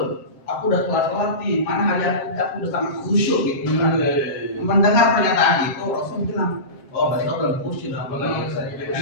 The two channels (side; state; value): right; late; 7.5 ms